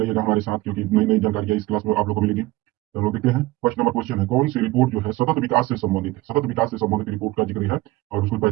हमारे साथ, क्योंकि नई नई जानकारियां इस क्लास में आप लोगों को मिलेगी। तो हम लोग देखते हैं। फर्स्ट नंबर क्वेश्चन है, कौन सी रिपोर्ट जो है सतत विकास से संबंधित है? सतत विकास से संबंधित रिपोर्ट का जिक्र है और उसको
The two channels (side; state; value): left; quieter; 19.0 dB